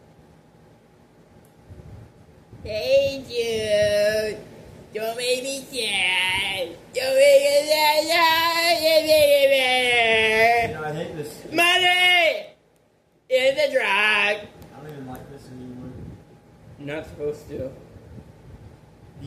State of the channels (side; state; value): both; identical; correlation 1.00